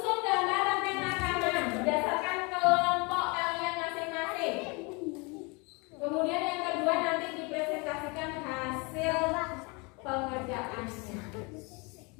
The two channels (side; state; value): right; quieter; 29.2 dB